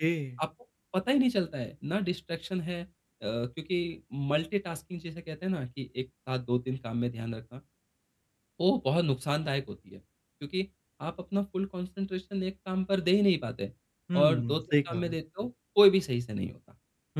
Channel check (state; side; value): identical; both; correlation 1.00